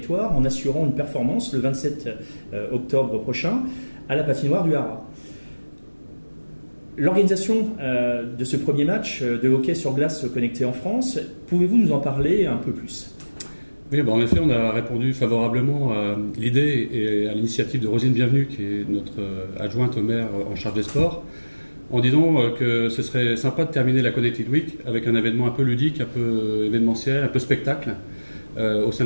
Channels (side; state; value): both; inverted; correlation -1.00